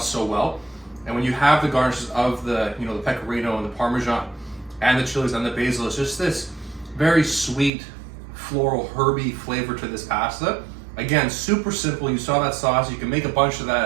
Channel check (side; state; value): left; drops out; at 7.7 s